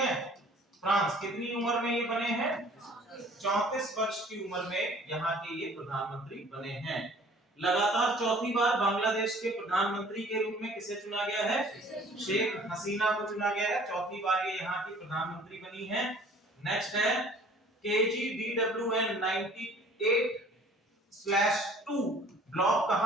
फ्रांस कितनी उम्र में ये बने हैं? 34 वर्ष की उम्र में यहाँ के ये प्रधानमंत्री बने हैं। लगातार 4थी बार बांग्लादेश के प्रधानमंत्री के रूप में किसे चुना गया है? शेख हसीना को चुना गया है। 4थी बार ये यहाँ की प्रधानमंत्री बनी है। नेक्स्ट है KGDWN 98/2 ब्लॉक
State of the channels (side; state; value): both; normal; correlation 0.52